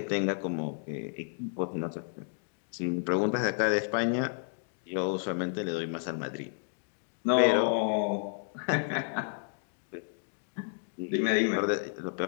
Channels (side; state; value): right; silent; digital silence